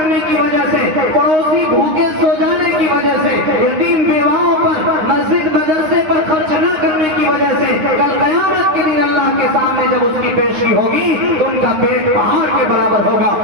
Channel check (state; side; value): late; left; 9.6 ms